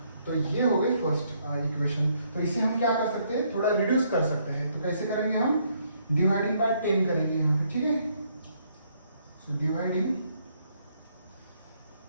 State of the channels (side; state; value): both; inverted; correlation -0.70